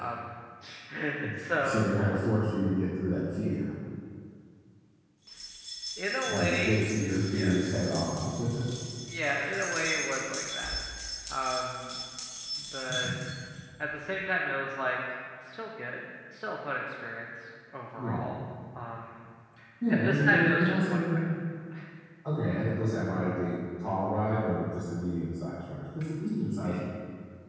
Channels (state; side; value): identical; both; correlation 1.00